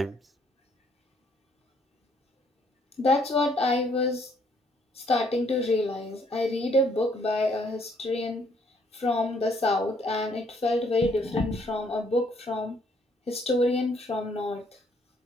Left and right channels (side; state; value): both; normal; correlation 0.67